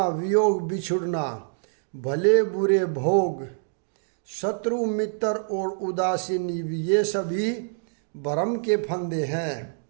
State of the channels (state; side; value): silent; left; digital silence